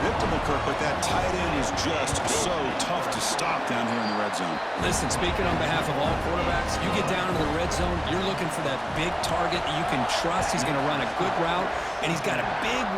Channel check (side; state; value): both; identical; correlation 1.00